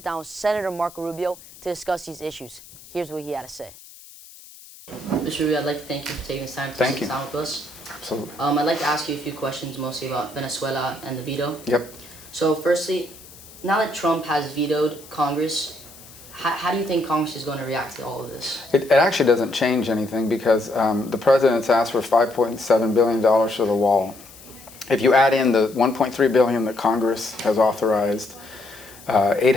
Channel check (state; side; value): noise; left; hiss, 20 dB below the sound